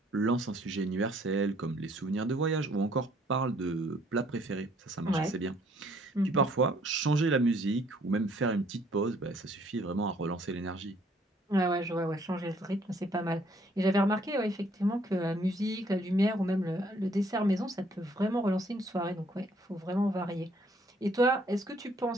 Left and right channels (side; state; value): both; normal; correlation 0.63